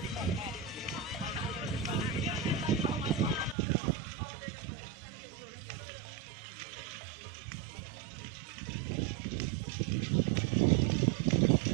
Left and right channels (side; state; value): left; drops out; at 3.6 s